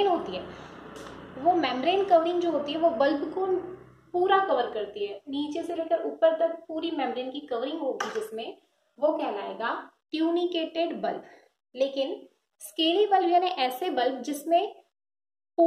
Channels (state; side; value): identical; both; correlation 1.00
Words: होती है, वो मेम्ब्रेन कवरिंग जो होती है वो बल्ब को पूरा कवर करती है, नीचे से लेकर ऊपर तक पूरी मेम्ब्रेन की कवरिंग होगी जिसमें, वो कहलाएगा ट्यूनिकेटेड बल्ब। लेकिन स्केली बल्ब यानी ऐसे बल्ब जिसमें